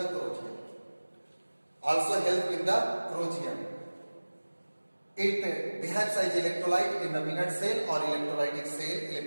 corrosion, also help in the corrosion. It behaves as electrolyte in the minute cell और इलेक्ट्रोलाइटिक सेल।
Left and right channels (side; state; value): both; inverted; correlation -1.00